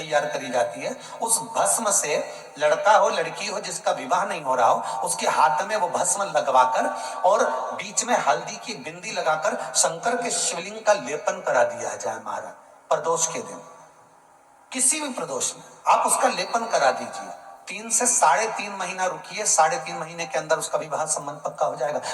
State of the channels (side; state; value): both; identical; correlation 1.00